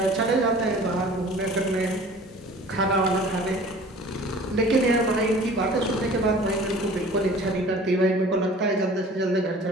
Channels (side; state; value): both; normal; correlation 0.46